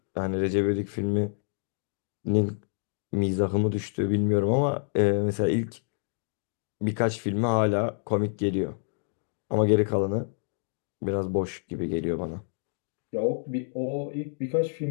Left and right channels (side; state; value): right; silent; digital silence